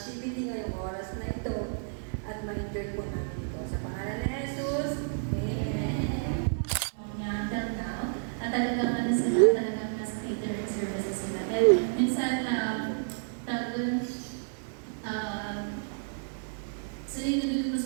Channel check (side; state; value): left; silent; digital silence